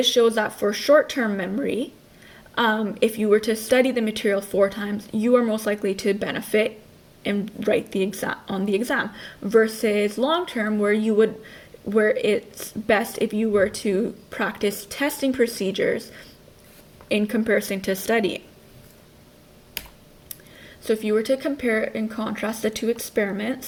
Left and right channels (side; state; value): both; identical; correlation 1.00